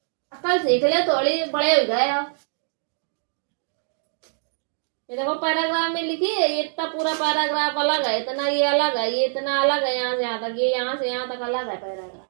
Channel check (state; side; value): silent; left; digital silence